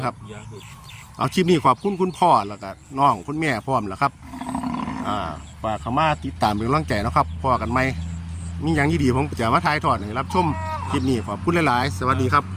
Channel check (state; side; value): identical; both; correlation 1.00